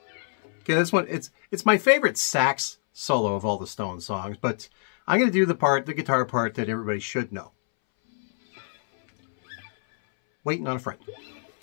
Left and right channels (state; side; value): silent; right; 62 dB below the other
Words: Okay, this one, it's my favorite sax solo of all the Stones songs, but I'm going to do the guitar part that everybody should know. Waiting on a Friend.